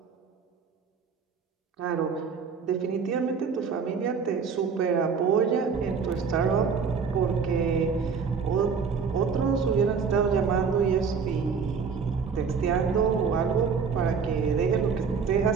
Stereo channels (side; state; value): left; quieter; 5.8 dB